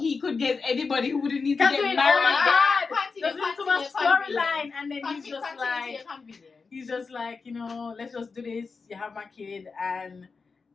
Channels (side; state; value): right; quieter; 4.7 dB